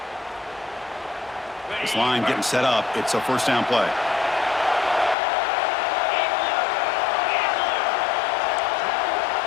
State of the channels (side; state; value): right; drops out; at 5.2 s